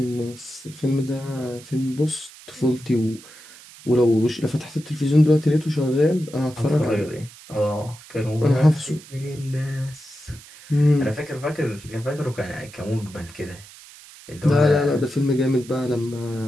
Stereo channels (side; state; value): right; noise; hiss, 20 dB below the sound